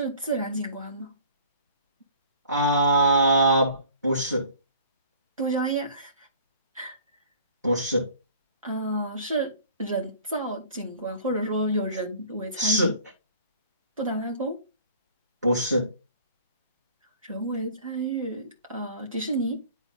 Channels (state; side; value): inverted; both; correlation -0.48